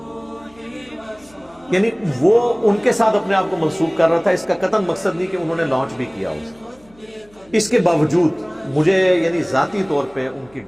یعنی وہ ان کے ساتھ اپنے آپ کو منسوخ کر رہا تھا، اس کا قطعاً مقصد نہیں کہ انہوں نے لانچ بھی کیا اسے، اس کے باوجود مجھے یعنی ذاتی طور پہ ان کی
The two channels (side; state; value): left; noise; hum, 29 dB below the sound